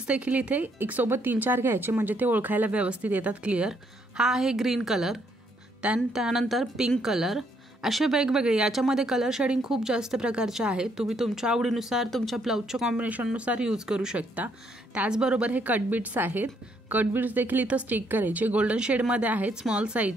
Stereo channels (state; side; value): normal; both; correlation 0.71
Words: देखील इथे एक सोबत 3-4 घ्यायचे, म्हणजे ते ओळखायला व्यवस्थित येतात, क्लिअर. हा आहे ग्रीन कलर, त्यानंतर पिंक कलर, असे वेगवेगळे. याच्यामध्ये कलर शेडिंग खूप जास्त प्रकारचे आहेत, तुम्ही तुमच्या आवडीनुसार तुमच्या ब्लाऊजच्या कॉम्बिनेशननुसार यूज करू शकता. त्याचबरोबर हे कट बीड्स आहेत. कट बीड्स देखील इथं स्टिक करायचे, गोल्डन शेडमध्ये आहेत, स्मॉल